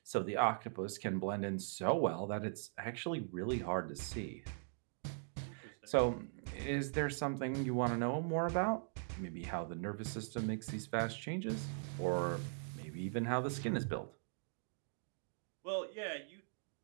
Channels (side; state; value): left; silent; digital silence